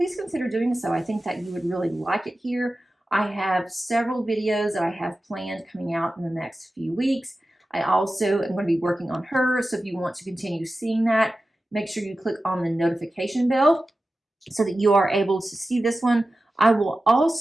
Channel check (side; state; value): both; normal; correlation 0.94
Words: consider doing so. I think that you would really like it here. I have several videos that I have planned coming out in the next few weeks. I also am going to be working on her, so if you want to continue seeing that, make sure you click on the notification bell so that you are able to see this one. I will